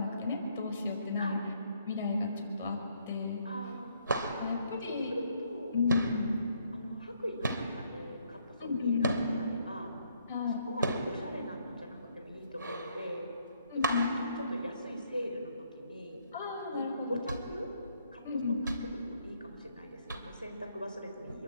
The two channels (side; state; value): both; inverted; correlation -0.70